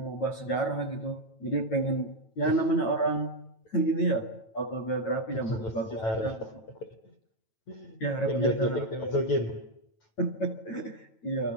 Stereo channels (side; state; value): right; late; 9.1 ms